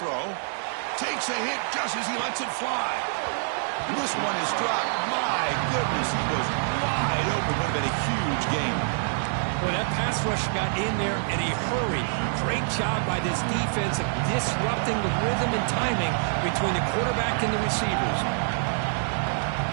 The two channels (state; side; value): silent; left; digital silence